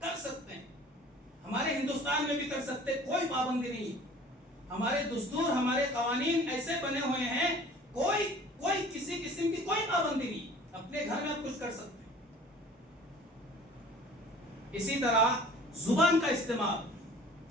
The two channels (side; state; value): both; normal; correlation 0.47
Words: سکتے ہیں, ہمارے ہندوستان میں بھی کر سکتے, کوئی پابندی نہیں. ہمارے دستور ہمارے قوانین ایسے بنے ہوئے ہیں, کوئی کسی قسم کی کوئی پابندی نہیں. اپنے گھر میں آپ کچھ کر سکتے ہیں. اسی طرح زبان کا استعمال,